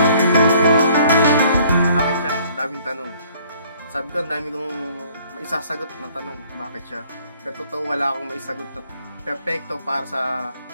Daming tanong. Sabi ko, ang dami kong maisasagot na tanong, bakit siya? Pero totoo, wala akong maisagot na perfecto para sa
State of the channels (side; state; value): both; inverted; correlation -0.59